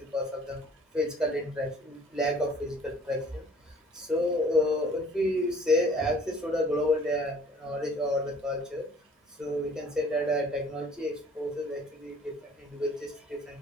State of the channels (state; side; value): normal; both; correlation 0.54